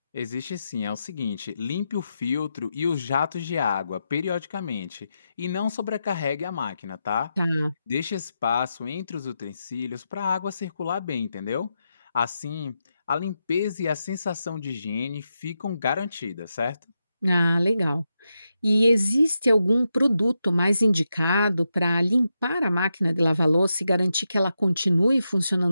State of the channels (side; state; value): both; inverted; correlation -0.87